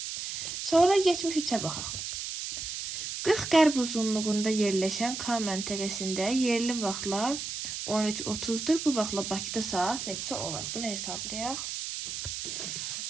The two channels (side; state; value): right; noise; hiss, 5 dB below the sound